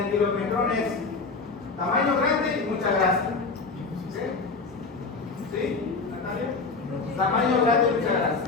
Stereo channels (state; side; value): quieter; right; 4.2 dB